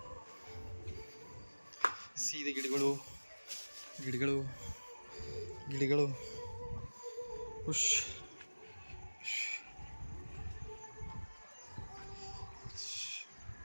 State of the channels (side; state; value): both; inverted; correlation -1.00